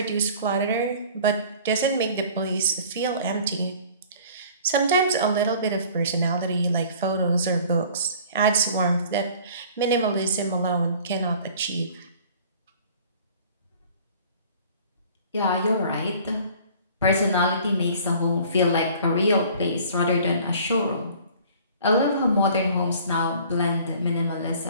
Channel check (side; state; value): both; inverted; correlation -0.49